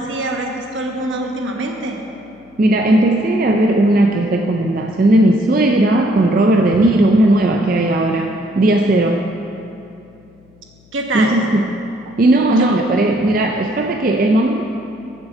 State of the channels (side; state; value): left; noise; hum, 30 dB below the sound